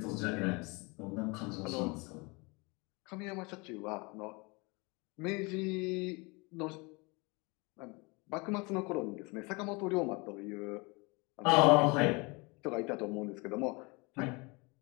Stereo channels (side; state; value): right; quieter; 27.7 dB